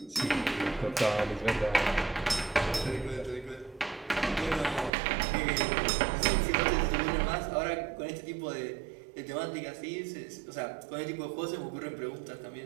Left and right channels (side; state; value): left; drops out; at 4.9 s